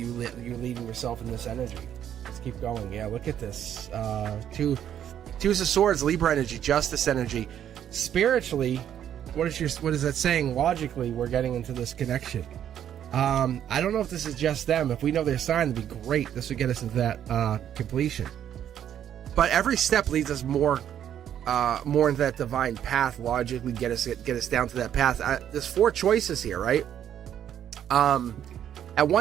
yourself in this energy. Let's keep going. Yeah, look at this. Twos of Swords, Libra energy, Justice energy. Spiritually, what is that saying? Logically, we're getting into this connection. I don't know if this is just them. If we know their sign, it'd be great. This would get us into that completion. But every step leads us more into that divine path. Logically, get us down to that path. There's 4 choices here, right? At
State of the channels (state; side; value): quieter; left; 10.0 dB